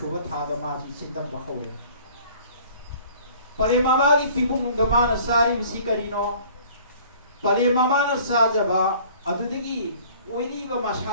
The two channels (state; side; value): inverted; both; correlation -0.51